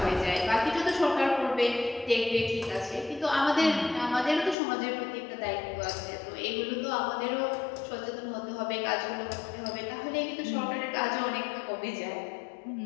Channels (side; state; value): right; drops out; at 4.5 s